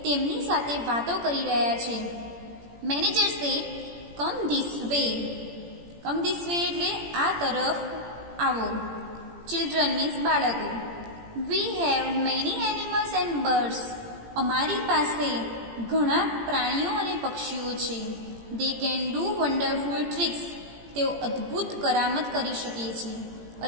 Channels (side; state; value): left; late; 17 ms